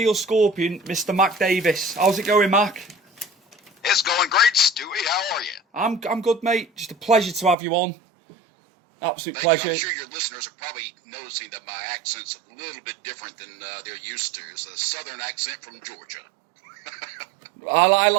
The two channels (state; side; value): drops out; left; at 7.6 s